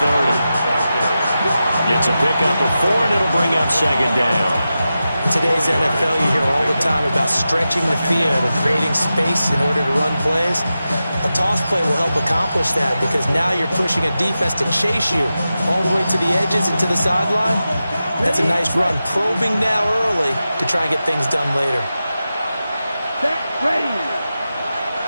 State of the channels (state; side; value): inverted; both; correlation -0.92